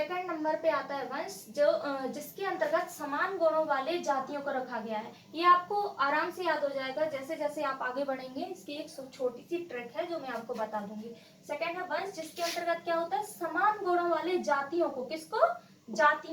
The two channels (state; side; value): identical; both; correlation 1.00